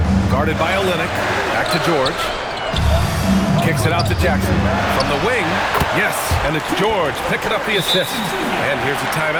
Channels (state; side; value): identical; both; correlation 1.00